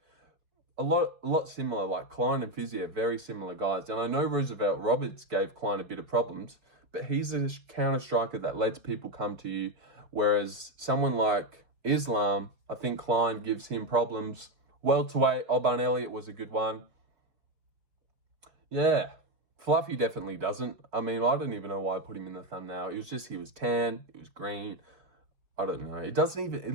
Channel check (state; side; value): late; left; 4.8 ms